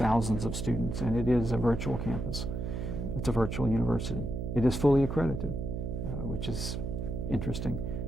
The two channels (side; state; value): right; noise; hum, 4 dB below the sound